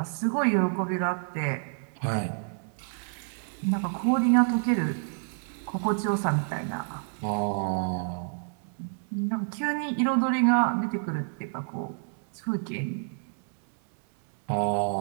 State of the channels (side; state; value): left; silent; 59 dB below the other